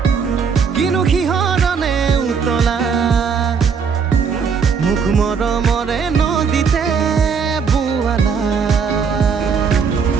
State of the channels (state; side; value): quieter; left; 6.1 dB